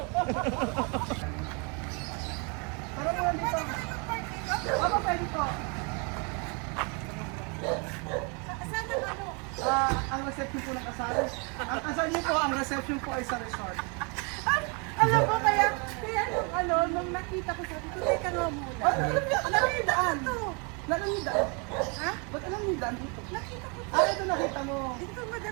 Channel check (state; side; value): quieter; left; 33.8 dB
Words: Parang mo dito. Ano pwede ko? Ang reception po ng kasal. Ang kasal niyo po, ang reception po ay sa resort. Alam mo, kaya nung nakita ko sabi ko, teka nga muna. Alam niyo yung daan? Alam niyo yung daan? Ha? Ba't alam niyo yung daan dito? Nakita ko. Ito nakita mo. Ito